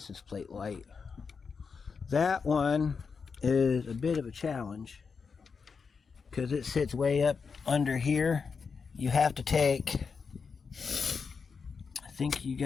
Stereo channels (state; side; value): quieter; right; 5.4 dB